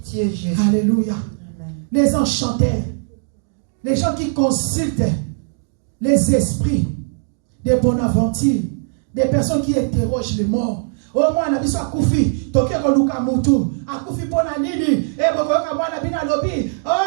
Jésus. Alléluia. Amen. Les enchanteurs, les gens qui consultent les esprits des Bonaventure, des personnes qui interrogent les morts. Au moins, on a besoin de Koufi, Tokyo Luka Moutou, à Koufi Ponanini, et Bokoka Bonabina Lobi,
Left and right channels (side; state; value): left; silent; digital silence